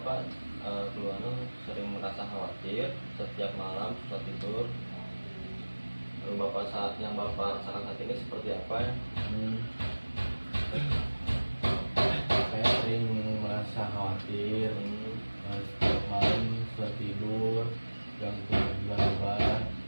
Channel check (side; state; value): both; inverted; correlation -1.00